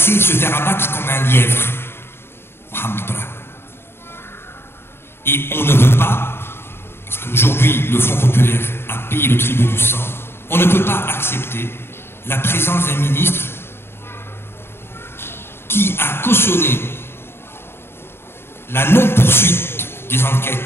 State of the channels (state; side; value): late; right; 0.11 ms